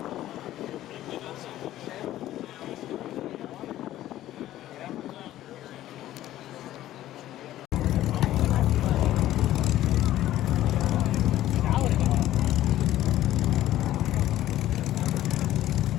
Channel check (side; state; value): right; quieter; 13.8 dB